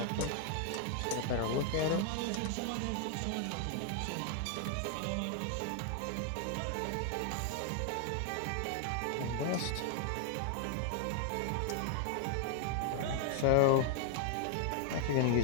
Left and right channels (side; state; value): both; different; correlation 0.00